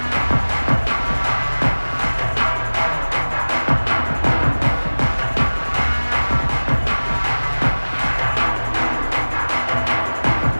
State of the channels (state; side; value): inverted; both; correlation -1.00